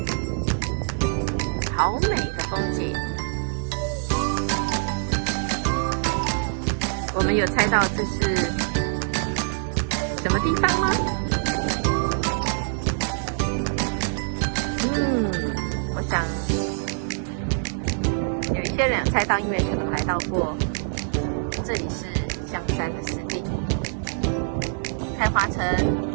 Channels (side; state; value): left; silent; digital silence